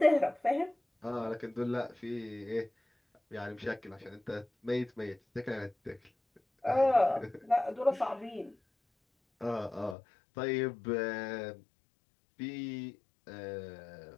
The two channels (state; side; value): drops out; right; at 10.0 s